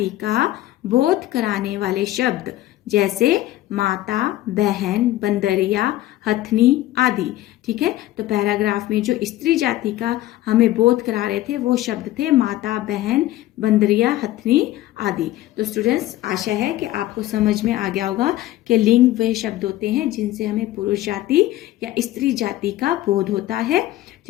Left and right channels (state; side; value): quieter; right; 15.3 dB